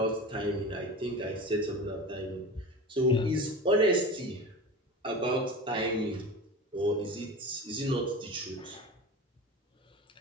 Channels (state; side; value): normal; both; correlation 0.31